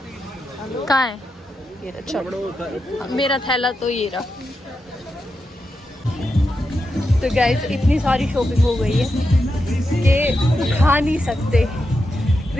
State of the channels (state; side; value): normal; both; correlation 0.87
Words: कहाँ है ये रहा? चलो मेरा थैला तो ये रहा। तो गाइस इतनी सारी शॉपिंग हो गई है कि खा नहीं सकते।